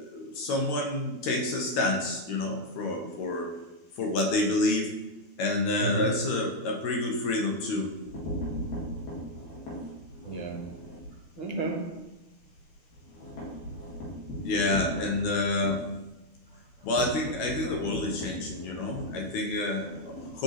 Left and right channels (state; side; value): late; right; 13 ms